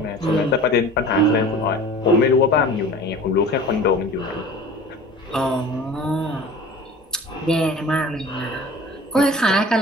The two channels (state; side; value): normal; both; correlation 0.41